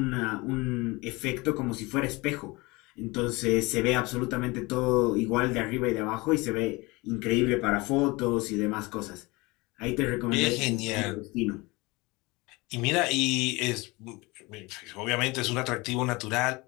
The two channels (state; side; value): quieter; right; 24.0 dB